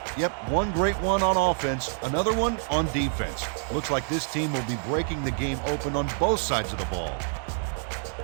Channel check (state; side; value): silent; left; 60 dB below the other